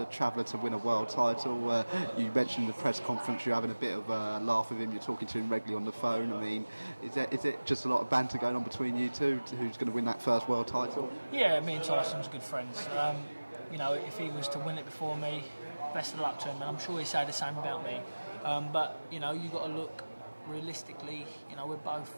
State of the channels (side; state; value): both; inverted; correlation -1.00